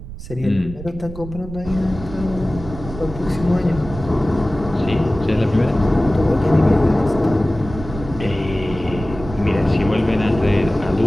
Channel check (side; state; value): right; noise; rumble, 12 dB below the sound